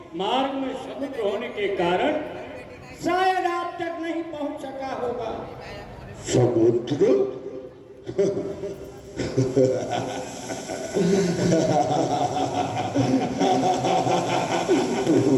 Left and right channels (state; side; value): identical; both; correlation 1.00